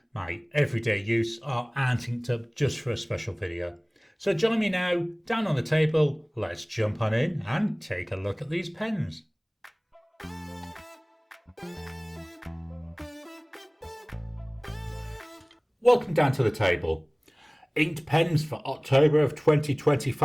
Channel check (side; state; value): both; identical; correlation 1.00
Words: my everyday use or aren't inked up just for a special video. So join me now, down on the table, let's jump on in and take a look at these pens. Welcome down to the table. Inked pens for October of